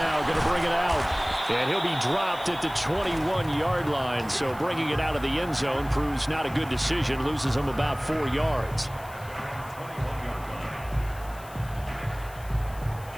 going to bring it out. And he'll be dropped at the 21-yard line. So bringing it out of the end zone proves not a good decision. Loses him about 4 yards.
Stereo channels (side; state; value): left; noise; hiss, 21 dB below the sound